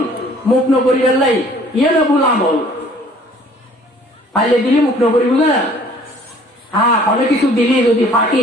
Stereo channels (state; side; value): normal; both; correlation 0.55